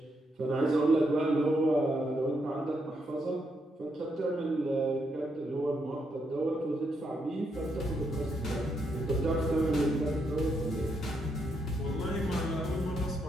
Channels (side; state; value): both; normal; correlation 0.78